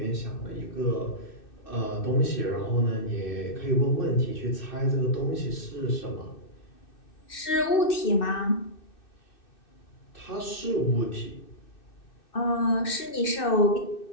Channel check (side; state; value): right; late; 2.6 ms